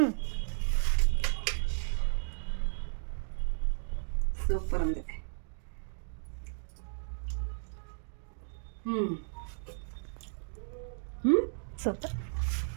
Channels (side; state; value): left; silent; digital silence